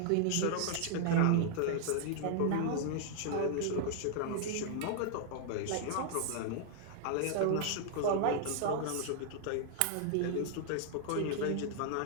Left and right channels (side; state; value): both; different; correlation -0.01